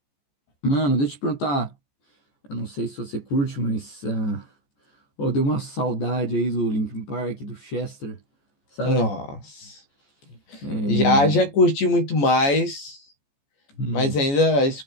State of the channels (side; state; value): right; late; 14 ms